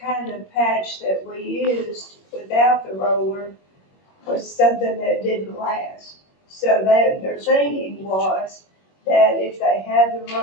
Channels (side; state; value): right; late; 21 ms